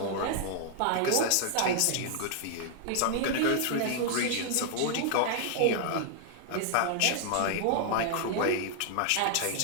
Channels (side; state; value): both; different; correlation -0.01